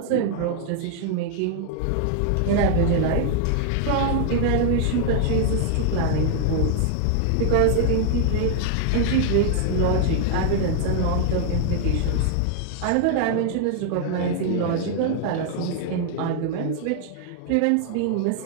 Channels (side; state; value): both; different; correlation 0.00